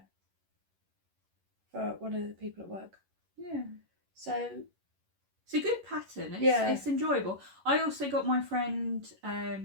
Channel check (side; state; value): left; late; 11 ms